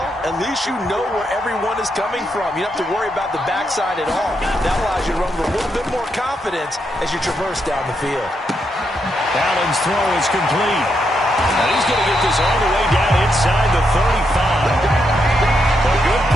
at least you know where everyone is coming from. You don't have to worry about the backside at all. That allows you to run with a little bit more confidence as you traverse down the field. Allen's throw is complete. And he's going to get this all the way down inside the 35. A good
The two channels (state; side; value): normal; both; correlation 0.81